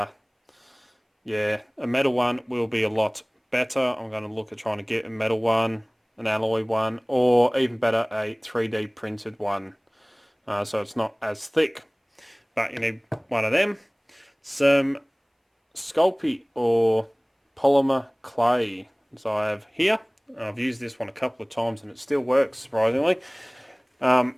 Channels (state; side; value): identical; both; correlation 1.00